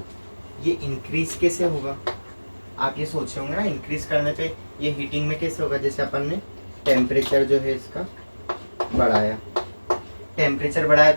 ये इंक्रीज कैसे होगा, आप ये सोच रहे होंगे ना, इंक्रीज करने पे ये हीटिंग में कैसे होगा, जैसे अपन ने टेम्परेचर जो है इसका बढ़ाया, टेम्परेचर बढ़ाया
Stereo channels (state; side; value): inverted; both; correlation -1.00